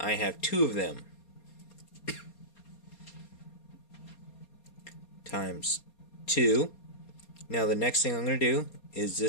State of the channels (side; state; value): right; late; 4.3 ms